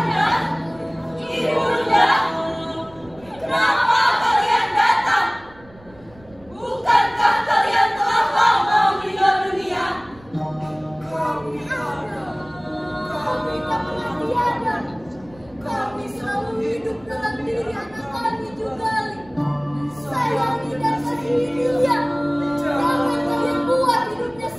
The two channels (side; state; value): right; noise; rumble, 25 dB below the sound